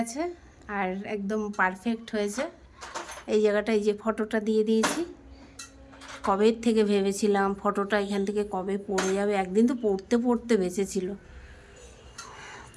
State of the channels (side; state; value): both; identical; correlation 1.00